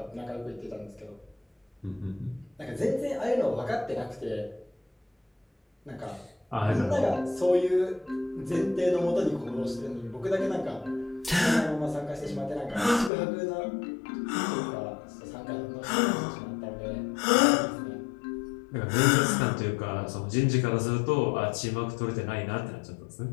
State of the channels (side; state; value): right; drops out; at 13.1 s